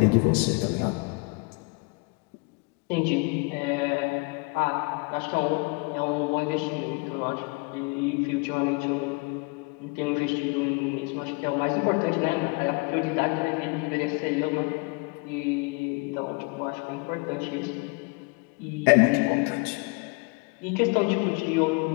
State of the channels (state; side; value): quieter; right; 29.9 dB